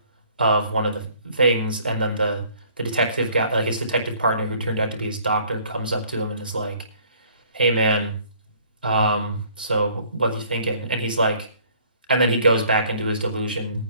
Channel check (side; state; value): both; inverted; correlation -0.58